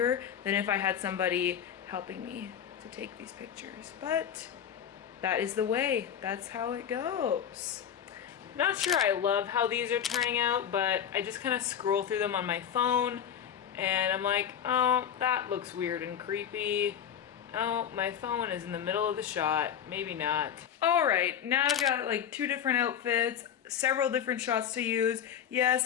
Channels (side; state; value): right; quieter; 8.9 dB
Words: than if I had somebody helping me to take these pictures. But that is the way. That's how it goes. Not sure I love how these are turning out, but I just kind of scroll through them on my phone, and I'm like, oh, that looks weird and creepy. Oh, my phone is in the middle of the shot. Maybe not. All right, now I've got like 2 different outfits, several different shots to use.